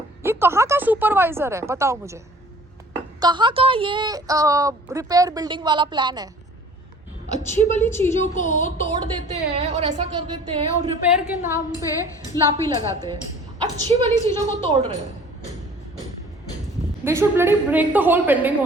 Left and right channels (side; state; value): both; normal; correlation 0.49